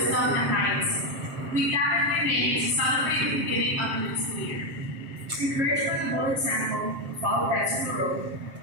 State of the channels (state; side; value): late; left; 7.5 ms